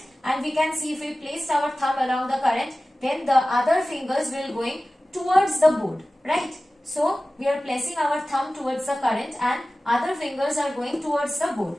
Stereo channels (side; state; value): both; normal; correlation 0.96